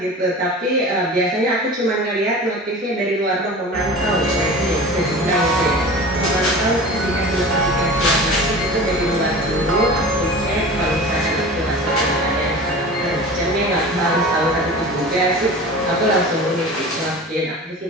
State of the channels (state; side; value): normal; both; correlation 0.36